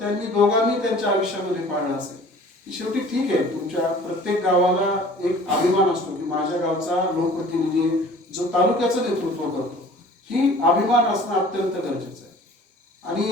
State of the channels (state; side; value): normal; both; correlation 0.48